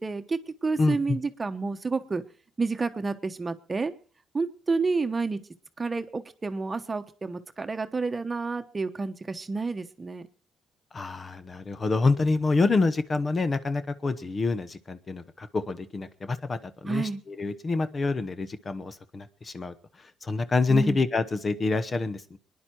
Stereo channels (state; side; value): normal; both; correlation 0.90